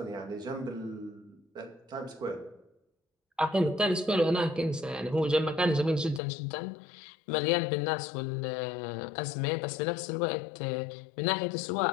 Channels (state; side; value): drops out; right; at 6.2 s